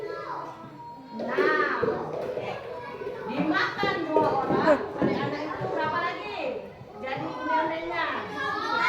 6. Dimakan 2 orang, anak-anak itu berapa lagi? Jadi onde-ondenya.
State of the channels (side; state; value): both; identical; correlation 1.00